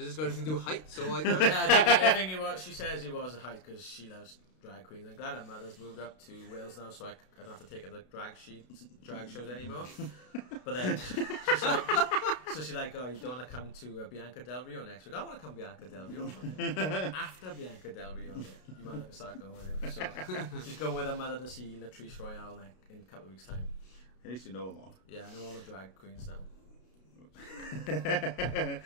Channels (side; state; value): right; late; 32 ms